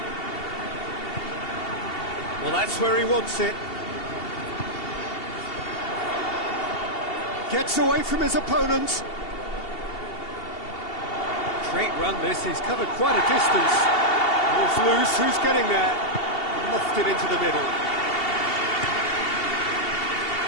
Well, that's where he wants it. Gets away from his opponents. Great run this, he's covered quite a distance. Ball's loose, who's getting there? Lofted into the middle.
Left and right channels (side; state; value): right; late; 2.7 ms